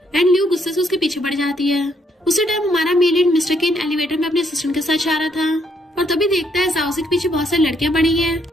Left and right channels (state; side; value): normal; both; correlation 0.72